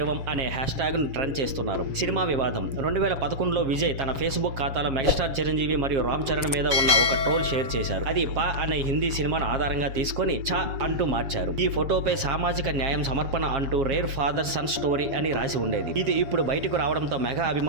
అనే హ్యాష్ ట్యాగ్ ను ట్రెండ్ చేస్తున్నారు. సినిమా వివాదం 2011లో విజయ్ తన ఫేస్బుక్ ఖాతాలో మెగాస్టార్ చిరంజీవి మరియు రామ్ చరణ్ మీద ఉన్న ఒక ట్రోల్ షేర్ చేశారు. అది పా అనే హిందీ సినిమాను ఆధారంగా తీసుకొని చా అంటూ మార్చారు. ఈ ఫోటోపై సామాజిక న్యాయం సమర్పణ అంటూ రేర్ ఫాదర్ సన్ స్టోరీ అని రాసి ఉండేది. ఇది ఇప్పుడు బయటకు రావడంతో మెగా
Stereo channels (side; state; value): left; late; 7.4 ms